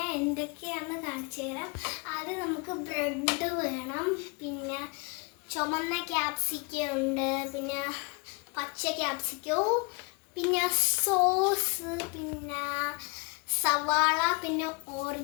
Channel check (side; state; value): right; quieter; 30.9 dB